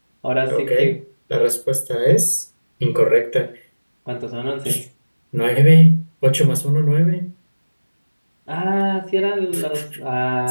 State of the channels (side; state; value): both; inverted; correlation -1.00